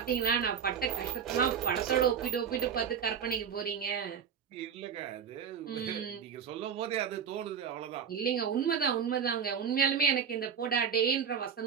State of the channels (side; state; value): left; quieter; 7.4 dB